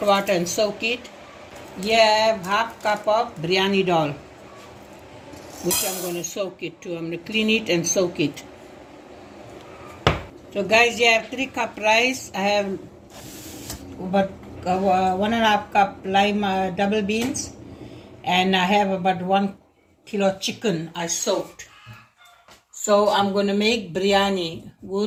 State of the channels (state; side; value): identical; both; correlation 1.00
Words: water and soak it. Here I have half cup of biryani dal, which I'm going to soak it too. I'm going to clean it and soak it. So guys, here I have 3 cup rice. I have about 1.5 cup lime double beans, and I have about 1 kilo chicken I soaked. So I'm going to make biryani